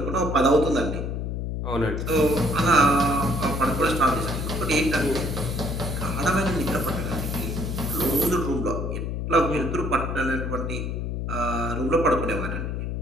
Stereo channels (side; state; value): left; noise; hum, 3 dB below the sound